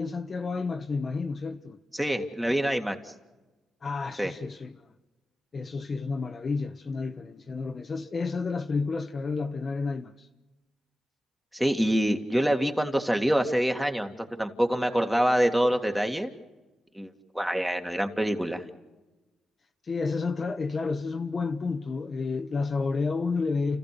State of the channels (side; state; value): both; normal; correlation 0.94